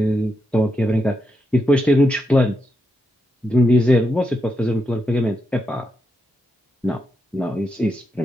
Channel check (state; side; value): normal; both; correlation 0.84